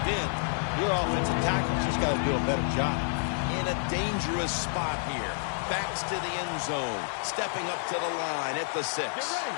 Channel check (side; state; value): right; silent; 58 dB below the other